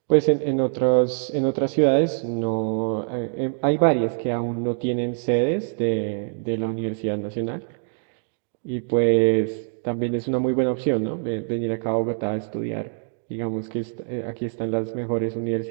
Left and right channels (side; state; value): left; silent; digital silence